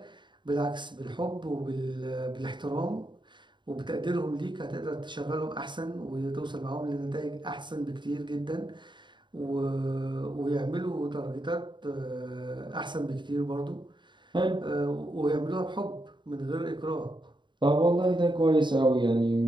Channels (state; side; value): late; left; 0.23 ms